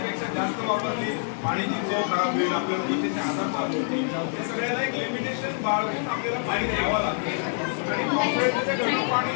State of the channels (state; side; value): silent; right; digital silence